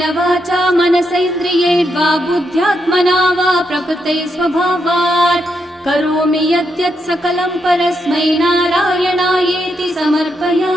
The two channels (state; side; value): normal; both; correlation 0.81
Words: वाचा मनसैन्द्रियैर्वा बुद्ध्यात्मना वा प्रकृते स्वभावात् करोमि यद्यत् सकलं परस्मै नारायणायेति